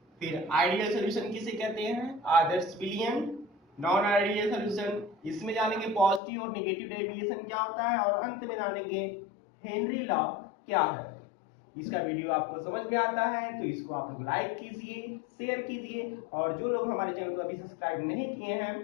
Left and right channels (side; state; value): right; drops out; at 6.2 s